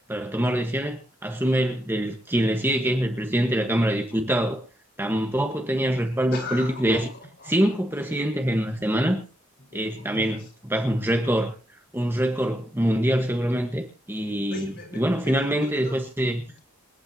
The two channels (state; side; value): normal; both; correlation 0.82